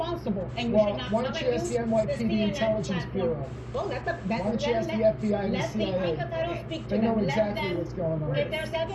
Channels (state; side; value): identical; both; correlation 1.00